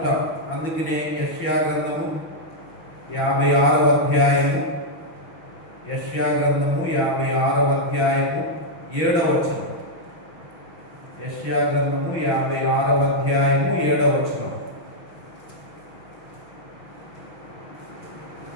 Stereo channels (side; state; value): right; late; 6.0 ms